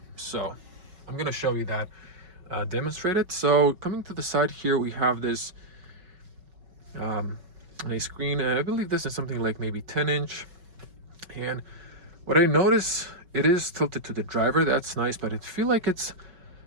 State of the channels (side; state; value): left; late; 5.3 ms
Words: So I'm gonna show you that demonstrated. So coming to the side here, we have this a screen. I believe this is something like maybe 10-inch. And what I notice, it is tilted to the driver. That's nice, but I feel like it's